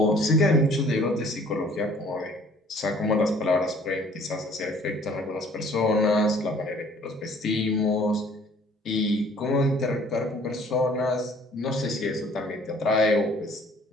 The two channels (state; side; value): normal; both; correlation 0.55